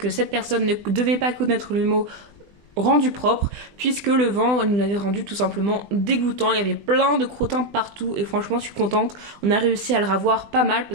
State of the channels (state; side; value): late; left; 20 ms